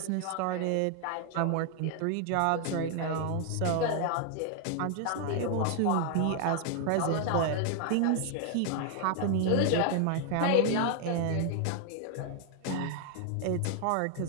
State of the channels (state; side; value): different; both; correlation 0.00